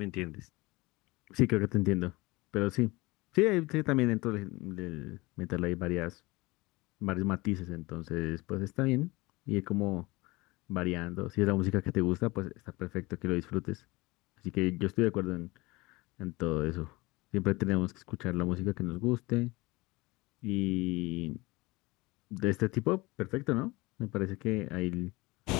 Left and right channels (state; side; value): quieter; right; 22.8 dB